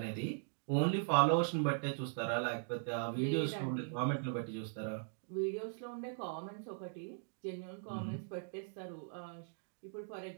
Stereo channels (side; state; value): left; silent; digital silence